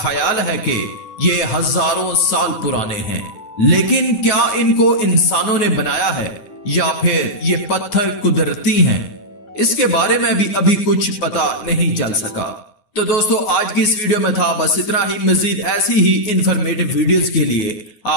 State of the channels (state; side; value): late; right; 9.4 ms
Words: है कि ये हजारों साल पुराने हैं, लेकिन क्या इनको इंसानों ने बनाया है या फिर ये पत्थर कुदरती हैं, इसके बारे में भी अभी कुछ पता नहीं चल सका। तो दोस्तों, आज की इस वीडियो में था बस इतना ही। मजीद ऐसी ही इंफॉर्मेटिव वीडियोस के लिए